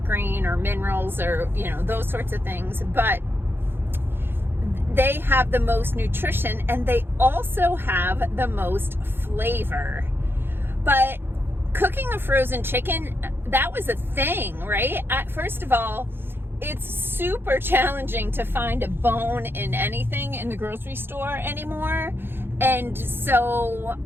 green or minerals or those sorts of things, but they have the most nutrition and they also have the most flavor. But cooking a frozen chicken, that was a thing, right? First of all, it's super challenging to find a bone in anything in the grocery store anymore. And so,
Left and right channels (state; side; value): late; left; 0.10 ms